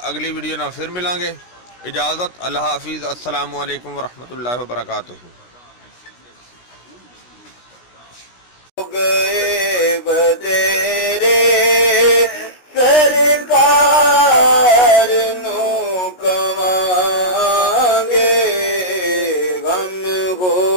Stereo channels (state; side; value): late; right; 16 ms